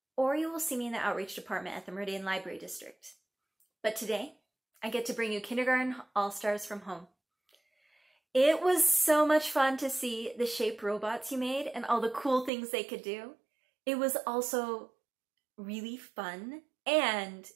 Or you will see me in the Outreach Department at the Meridian Library District. But today, I get to bring you Kindergarten All-Stars from home. It was so much fun to see the shape robots you made and all the cool things they could do. It was also really fun, and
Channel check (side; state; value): left; drops out; at 12.5 s